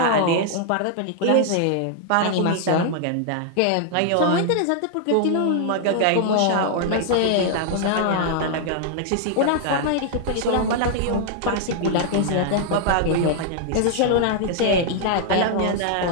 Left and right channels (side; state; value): both; different; correlation 0.00